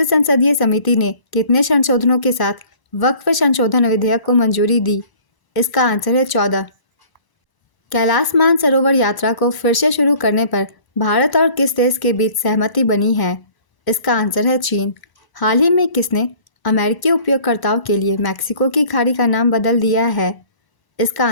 संसदीय समिति ने कितने संशोधनों के साथ वक्फ संशोधन विधेयक को मंजूरी दी? इसका आंसर है 14। कैलाश मानसरोवर यात्रा को फिर से शुरू करने पर भारत और किस देश के बीच सहमति बनी है? इसका आंसर है चीन। हाल ही में किसने अमेरिकी उपयोगकर्ताओं के लिए मैक्सिको की खाड़ी का नाम बदल दिया है? इसका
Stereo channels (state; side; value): late; right; 1.0 ms